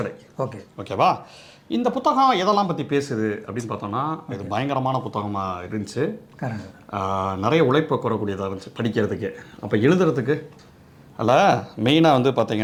ஓகேவா? இந்த புத்தகம் எதெல்லாம் பற்றி பேசுது அப்படின்னு பார்த்தோன்னா, இது பயங்கரமான புத்தகமாக இருந்துச்சு. நிறைய உழைப்பை கூறக்கூடியதாக இருந்துச்சு படிக்கிறதுக்கு. அப்போ எழுதுறதுக்கு அதில் மெயினாக வந்து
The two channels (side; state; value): both; identical; correlation 1.00